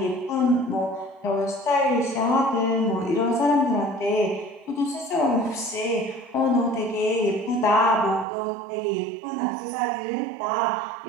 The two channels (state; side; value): drops out; left; at 8.2 s